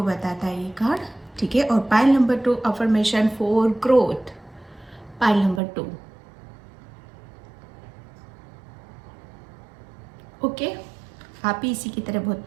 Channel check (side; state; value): left; drops out; at 5.6 s